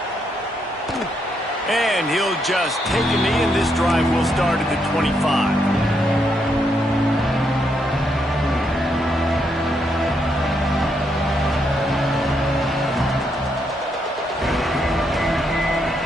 And he'll just take a knee, and this drive will start at the 25.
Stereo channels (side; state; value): both; normal; correlation 0.78